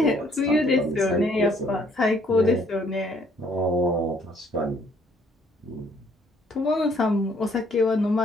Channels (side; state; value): both; normal; correlation 0.64